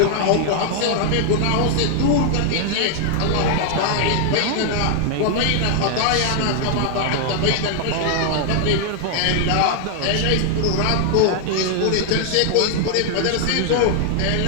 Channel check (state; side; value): different; both; correlation 0.00